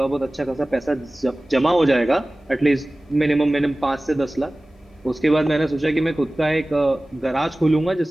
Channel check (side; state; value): both; normal; correlation 0.97